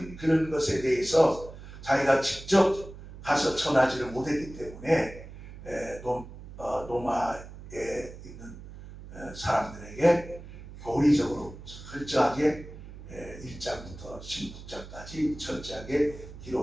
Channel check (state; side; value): noise; right; hum, 15 dB below the sound